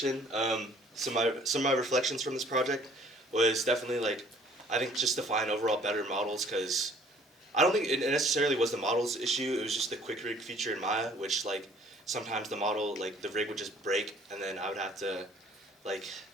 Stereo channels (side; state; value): both; normal; correlation 0.57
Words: Some of my reflections from this project was definitely like, I think just to find overall better models, because I don't think it necessarily was the model's issue. It was just the quick rig feature in Maya, which like sometimes the model, like the rig would just break, and then I would have to like